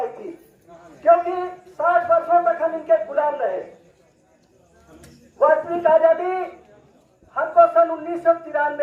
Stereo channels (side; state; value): both; identical; correlation 1.00